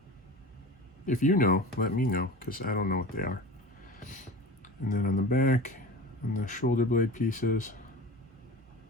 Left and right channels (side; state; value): both; normal; correlation 0.33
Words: If you know, let me know, because I don't know what they are. And then on the back, on the shoulder blade pieces,